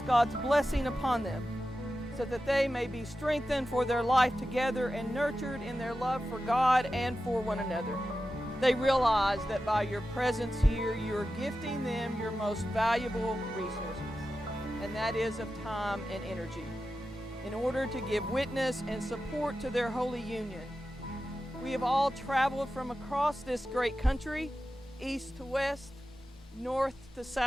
God's blessing upon them so that they may be strengthened for their life together and nurtured in their love for God and for one another. They realize that by your presence here, you're gifting them your most valuable resources, and that is of time and energy, in order to give witness and support to their holy union. We have all traveled from across this great country, east to west, north to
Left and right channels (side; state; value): both; normal; correlation 0.92